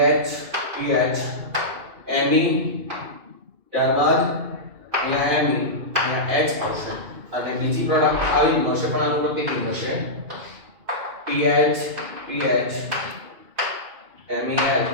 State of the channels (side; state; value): left; late; 2.5 ms